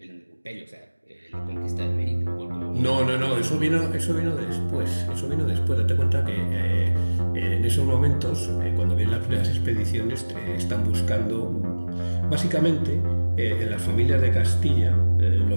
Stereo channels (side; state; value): both; inverted; correlation -1.00